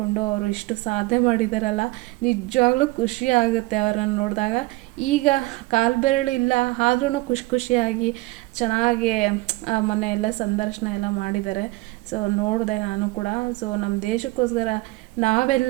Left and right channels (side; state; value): left; quieter; 21.5 dB